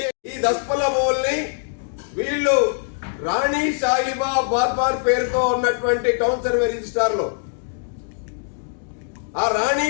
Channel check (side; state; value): right; silent; digital silence